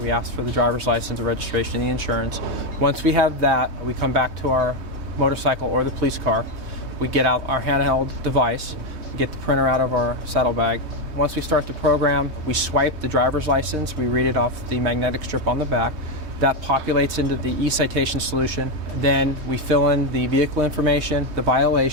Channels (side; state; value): left; late; 3.2 ms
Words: ask for the driver's license, the registration, the insurance. Once we have that, we come back to our motorcycle or the police car. We get out our handheld device, get the printer out of our saddlebag. Once we start the program, we swipe the driver's license, we read it off the magnetic strip on the back. That populates into the e-citation solution. Then we fill in the vehicle information, the